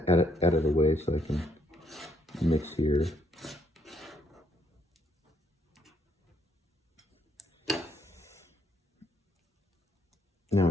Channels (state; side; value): normal; both; correlation 0.71